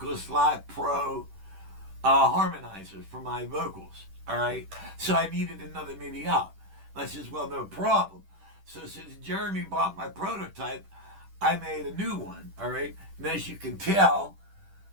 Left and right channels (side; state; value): left; late; 10 ms